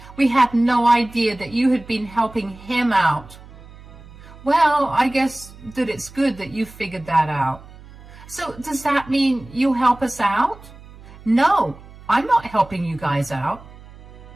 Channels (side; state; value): right; noise; hum, 20 dB below the sound